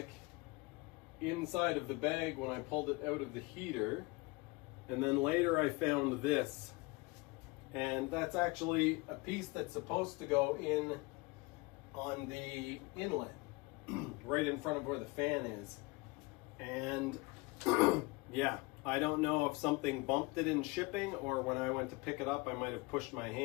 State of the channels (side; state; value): right; quieter; 25.1 dB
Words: inside of the bag when I pulled it out of the heater. And then later I found this, and that's actually a piece that's supposed to go in on the inlet right in front of where the fan is. And yeah, I don't know if something bumped it in shipping, or when I went to pick it up I might have pushed my